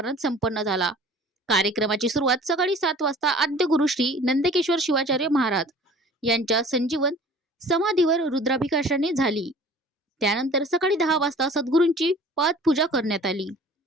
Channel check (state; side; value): normal; both; correlation 0.47